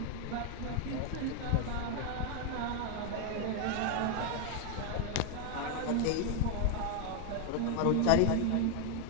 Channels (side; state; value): both; different; correlation 0.01